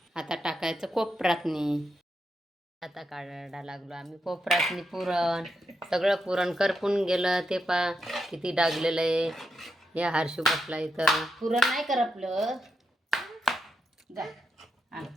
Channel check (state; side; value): normal; both; correlation 0.84